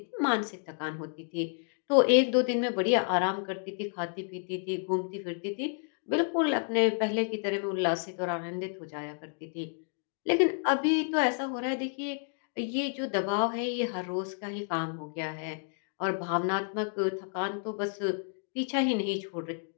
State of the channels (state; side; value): silent; right; 56 dB below the other